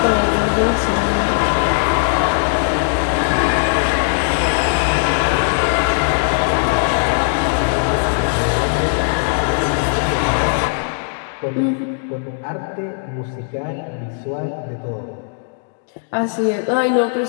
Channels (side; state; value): right; silent; digital silence